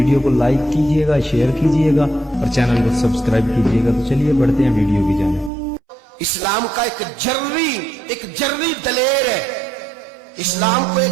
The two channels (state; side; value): drops out; left; at 5.5 s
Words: کو لائک کیجئے گا، شیئر کیجئے گا اور چینل کو سبسکرائب کیجئے گا۔ تو چلیے بڑھتے ہیں ویڈیو کی جانب۔ اسلام کا ایک جرری دلیر ہے۔ اسلام کو